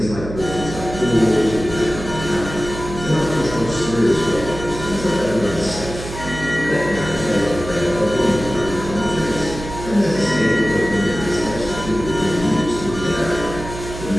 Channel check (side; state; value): right; noise; hum, 10 dB below the sound